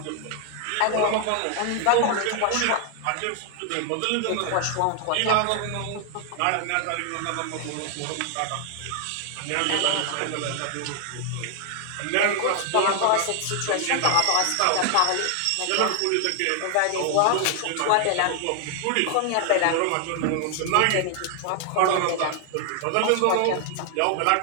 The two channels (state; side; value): different; both; correlation 0.00